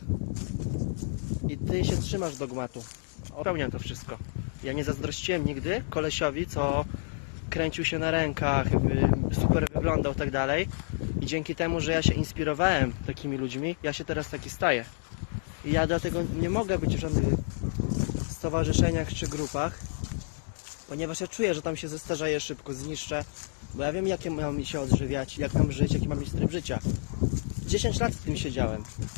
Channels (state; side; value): silent; right; digital silence